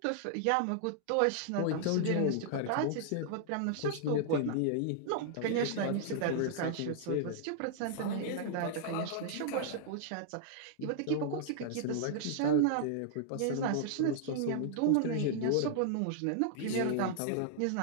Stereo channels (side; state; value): both; different; correlation -0.01